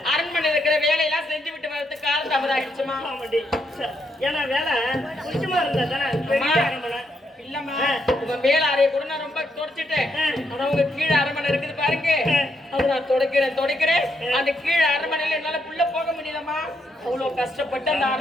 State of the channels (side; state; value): both; normal; correlation 0.78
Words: அரண்மனை இருக்கிற வேலையெல்லாம் செஞ்சு விட்டு வரதுக்கு காலதாமதம் ஆயிடுச்சுமா? ஆமாடி. ஏன்னா வேலை கொஞ்சமா இருந்தா தானே பெரிய அரண்மனை. இல்லம்மா, உங்க மேல அறைய கூட நான் ரொம்ப தொடச்சிட்டேன். ஆனா உங்க கீழே அரண்மனை இருக்குது பாருங்க, அது நான் தொடக்கிறேன். அந்த கீழே அரண்மனையில என்னால புள்ள போக முடியலம்மா. அவ்வளவு கஷ்டப்பட்டு அந்த